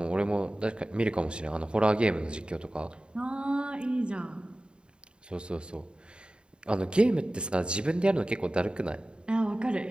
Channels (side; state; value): left; late; 0.052 ms